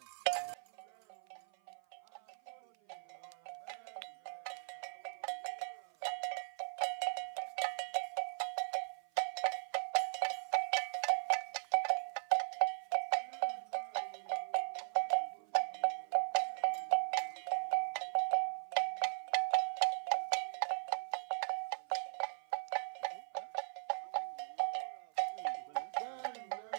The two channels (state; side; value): silent; left; 52 dB below the other